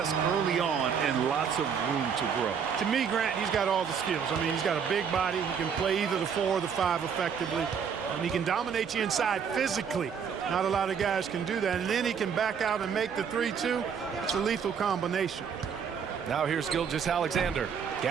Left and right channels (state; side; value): quieter; left; 7.0 dB